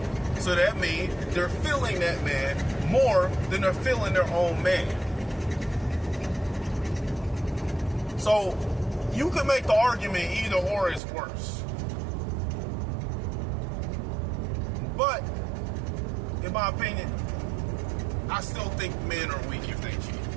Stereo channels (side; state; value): left; drops out; at 11.0 s